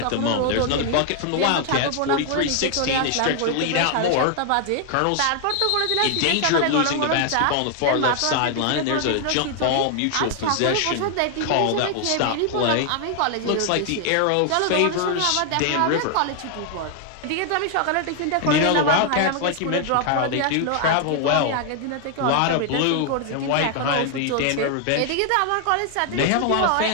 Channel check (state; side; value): different; both; correlation 0.00